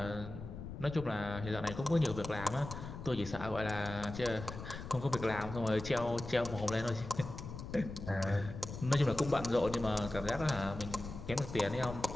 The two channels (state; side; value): noise; left; rumble, 10 dB below the sound